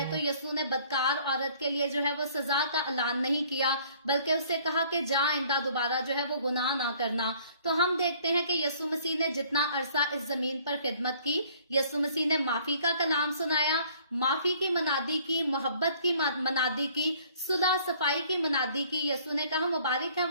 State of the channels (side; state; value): both; inverted; correlation -0.57